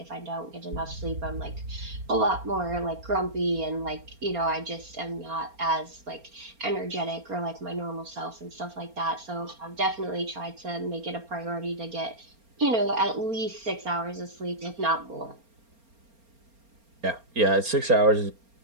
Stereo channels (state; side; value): late; left; 4.3 ms